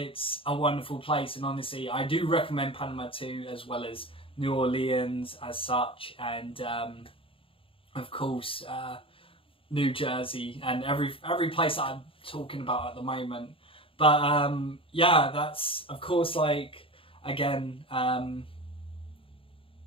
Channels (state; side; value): late; right; 0.26 ms